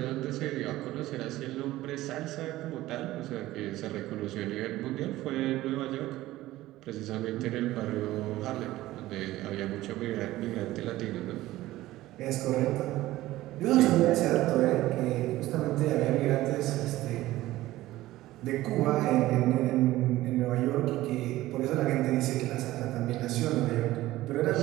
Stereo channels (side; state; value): left; quieter; 16.4 dB